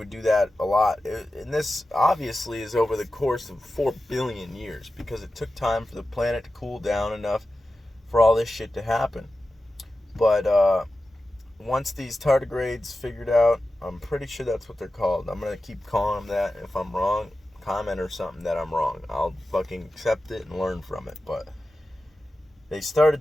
do that a lot. And this obviously is over the course of 4 billion years, because it took time for the planet to cool down enough for all this shit to happen. But once these tardigrades figured out, I'm pretty sure that's what they're called. I'm going to keep calling them that. If I'm wrong, comment or something that I'm wrong. I'll fucking accept it and learn from it. But they started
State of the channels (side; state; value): both; normal; correlation 0.93